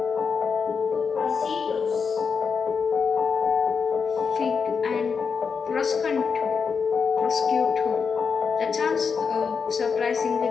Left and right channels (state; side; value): quieter; right; 5.7 dB